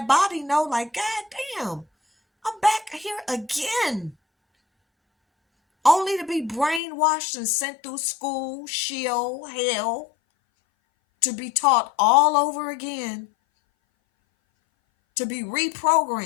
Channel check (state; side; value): drops out; right; at 6.8 s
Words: body know, like, God damn, I'm back here again. Only to be brainwashed and sent through school, shield, hell, to be taught all over again, to be